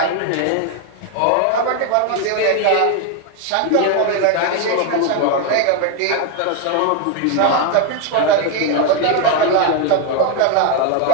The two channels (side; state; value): both; different; correlation 0.01